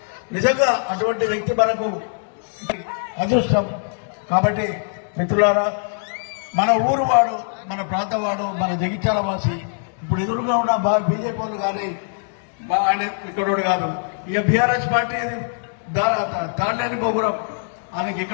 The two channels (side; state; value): right; silent; digital silence